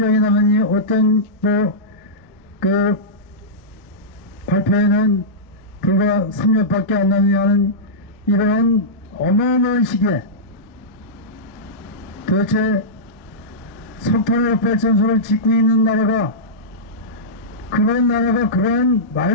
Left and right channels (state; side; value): normal; both; correlation -0.15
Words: 남았니 어떤 발표에는 불과 3년밖에 안 남냐는 이러한 어마어마한 시기에 도대체 석탄화력발전소를 짓고 있는 나라가 그러한